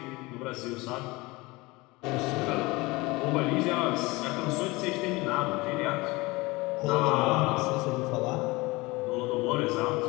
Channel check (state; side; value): quieter; right; 22.9 dB